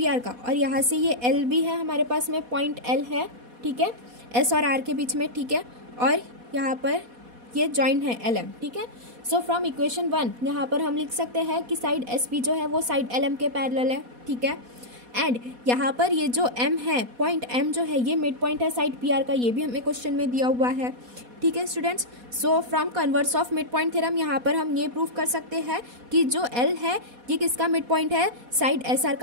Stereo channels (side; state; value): left; late; 4.2 ms